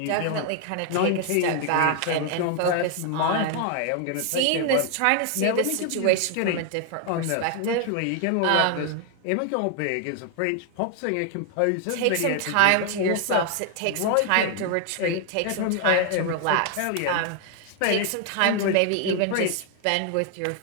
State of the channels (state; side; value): different; both; correlation 0.00